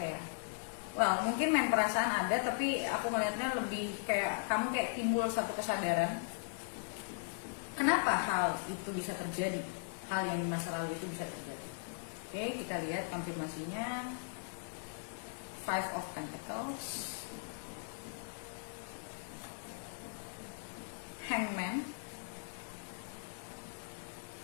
well, mungkin main perasaan ada, tapi aku ngeliatnya lebih kayak kamu kayak timbul satu kesadaran kenapa hal itu bisa terjadi, hal yang di masa lalu itu bisa terjadi. Oke, kita lihat konfirmasinya. Five of Pentacles, Hangman,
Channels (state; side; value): silent; right; digital silence